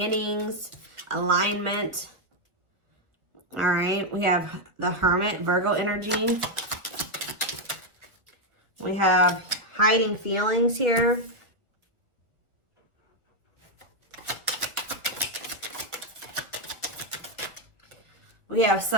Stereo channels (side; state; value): left; late; 1.4 ms